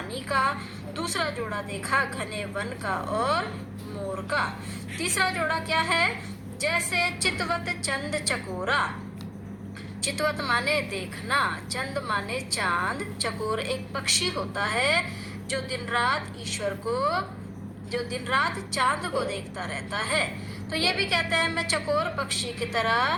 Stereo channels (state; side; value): identical; both; correlation 1.00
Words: का, दूसरा जोड़ा देखा घने वन का और मोर का। तीसरा जोड़ा क्या है? जैसे चितवत चंद चकोरा। चितवत माने देखना, चंद माने चांद, चकोर एक पक्षी होता है जो दिन रात चांद को देखता रहता है। तो ये भी कहते हैं मैं चकोर पक्षी की